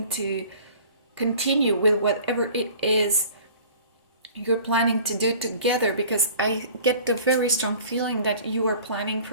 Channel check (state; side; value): inverted; both; correlation -0.46